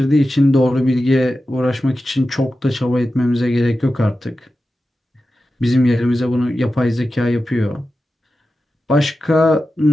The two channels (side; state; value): both; normal; correlation 0.92